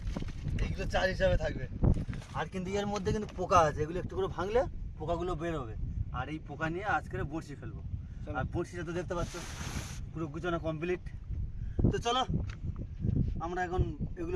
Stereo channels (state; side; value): identical; both; correlation 1.00